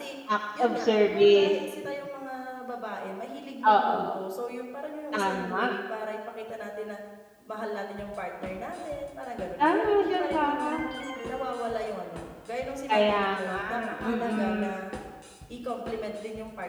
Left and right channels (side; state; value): both; identical; correlation 1.00